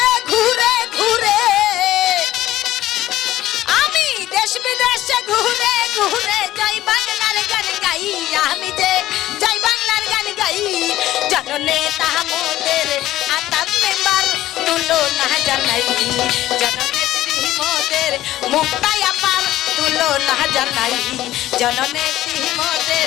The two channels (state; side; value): quieter; right; 14.6 dB